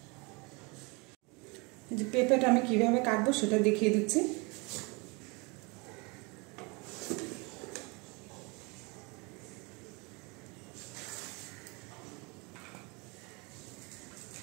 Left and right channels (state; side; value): quieter; left; 28.6 dB